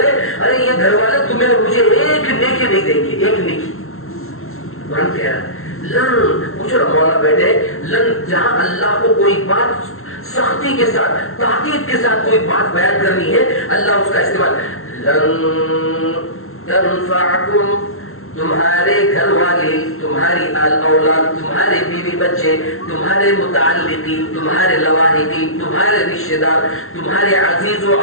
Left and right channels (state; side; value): late; right; 0.62 ms